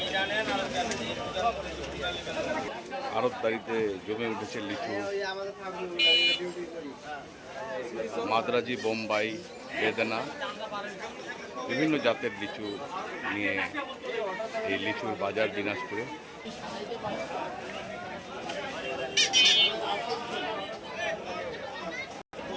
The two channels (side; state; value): both; identical; correlation 1.00